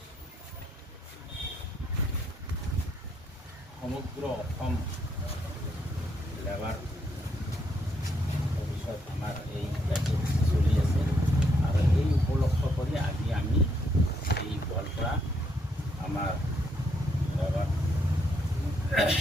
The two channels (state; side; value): normal; both; correlation 0.75